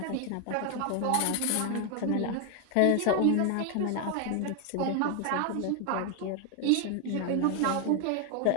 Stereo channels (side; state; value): both; different; correlation 0.01